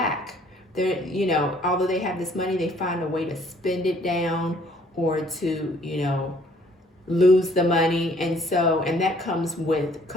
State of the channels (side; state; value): both; normal; correlation 0.60